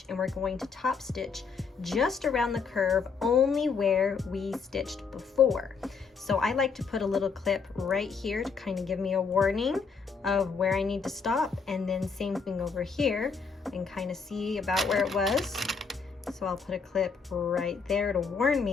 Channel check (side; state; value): right; quieter; 5.3 dB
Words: and we're going to top stitch just around the curve, only where we stitched before. So I like to put a little clip right here to kind of give me a warning of where I need to stop, and then same thing over here and kind of see about where it was. So I'll put a clip right there to warn